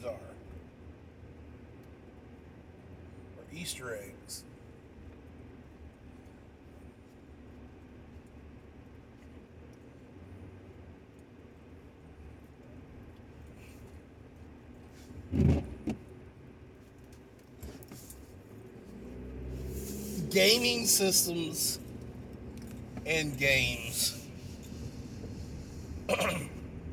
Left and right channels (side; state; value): both; identical; correlation 1.00